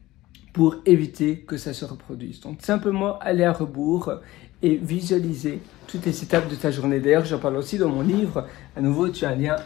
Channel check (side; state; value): right; quieter; 17.5 dB